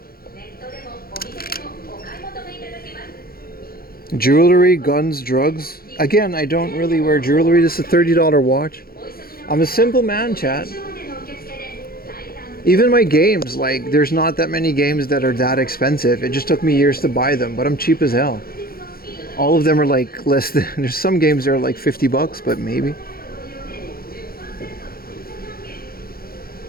Jewelry, guns, drugs. Again, I don't really wear jewelry. This is a $30 watch. I'm a simple man, chat. Even my games, like, there's not that many games that are that expensive. It just took me years to buy them, but I'm cheap as hell. All of them are like less than, there's some games that are like $50, but maybe.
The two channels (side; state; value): right; late; 0.43 ms